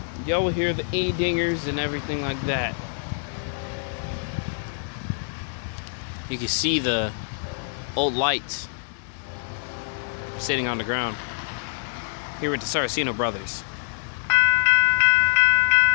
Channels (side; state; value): right; silent; digital silence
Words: Y'all will hear the E-dingers and everything like that. You can see the old lights sitting on the ground here with the Saraceno brothers.